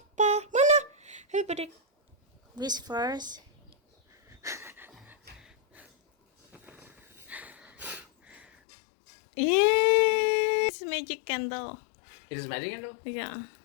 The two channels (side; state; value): right; drops out; at 8.5 s